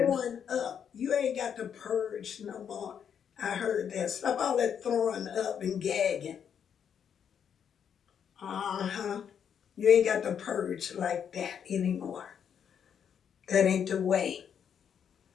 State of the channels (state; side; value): quieter; right; 8.0 dB